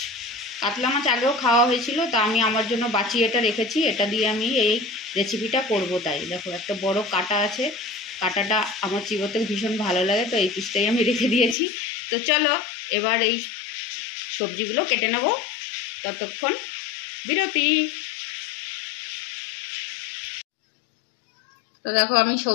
কাতলা মাছ আগেও খাওয়া হয়েছিল, তা আমি আমার জন্য বাঁচিয়ে এটা রেখেছি। এটা দিয়ে আমি এই রেসিপিটা করব। তাই দেখো, একটা বড় কাঁটা আছে। কাঁটাটা আমার চিবোতে ভীষণ ভালো লাগে, তো এই পিসটাই আমি রেখে দিয়েছি। তো চলো এবার এই সবজিগুলো কেটে নেব। ততক্ষণ বিরতি। তো দেখো, আমি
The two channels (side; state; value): right; drops out; at 11.6 s